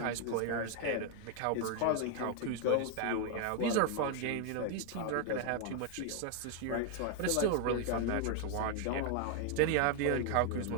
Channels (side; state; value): both; different; correlation 0.01